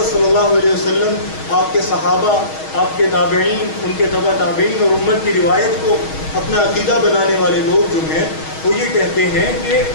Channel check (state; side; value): late; right; 6.3 ms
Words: صلی اللہ علیہ وسلم، آپ کے صحابہ، آپ کے تابعین، ان کے تبع تابعین اور امت کی روایت کو اپنا عقیدہ بنانے والے لوگ جو ہیں وہ یہ کہتے ہیں کہ